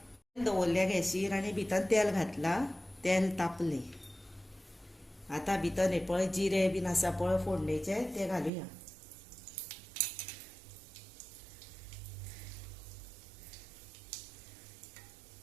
दवरल्या गॅसीर आनी भितर तेल घातला, तेल तापलें. आतां भितर हे पळय जिरें बीन आसा पळय फोडणेचें तें घालुया.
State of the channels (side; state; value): left; drops out; at 8.5 s